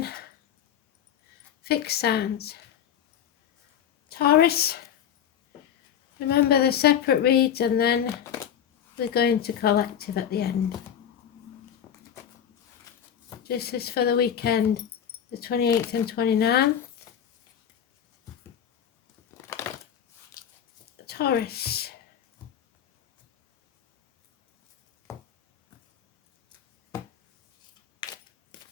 fixed signs. Taurus, remember the separate reads and then we're going to collective at the end. This is for the weekend, the 28th and 29th. Taurus.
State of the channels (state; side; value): quieter; right; 9.2 dB